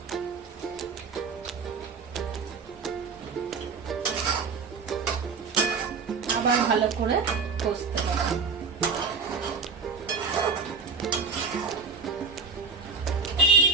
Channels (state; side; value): quieter; left; 5.1 dB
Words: আবার ভালো করে কষতে হবে।